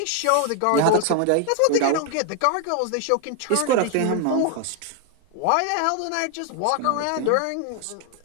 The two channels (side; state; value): both; different; correlation 0.00